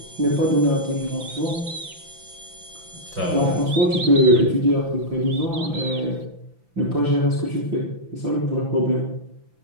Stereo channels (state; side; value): late; left; 5.9 ms